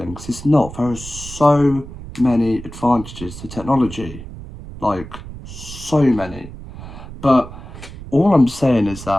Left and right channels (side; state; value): right; noise; rumble, 13 dB below the sound